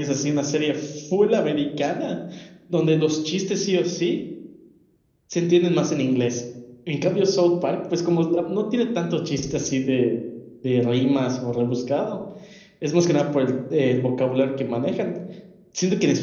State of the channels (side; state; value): both; identical; correlation 1.00